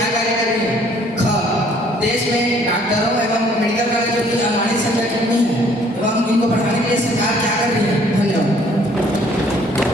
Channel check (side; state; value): both; normal; correlation 0.60